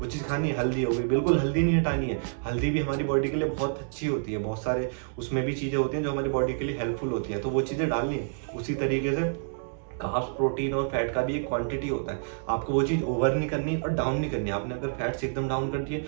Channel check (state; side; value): silent; left; 59 dB below the other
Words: चीज़ खानी है। हल्दी हो गई, बिल्कुल हल्दी नहीं हटानी है। हल्दी भी हमारी बॉडी के लिए बहुत अच्छी होती है। बहुत सारे उसमें भी चीज़ें होती हैं जो हमारी बॉडी के लिए हेल्पफुल होती हैं, तो वो चीज़ें डालनी है। उसी तरीके से कार्ब्स, प्रोटीन और फैट का भी एक क्वांटिटी होता है। आपको वो चीज़ ओवर नहीं करनी और डाउन नहीं करनी। आपने अगर फैट्स एकदम डाउन कर दिए,